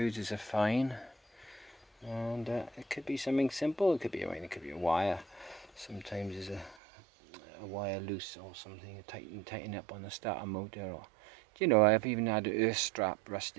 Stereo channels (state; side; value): drops out; left; at 6.8 s